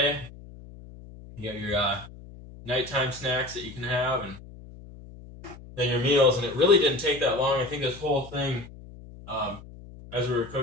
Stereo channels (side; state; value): left; noise; hum, 17 dB below the sound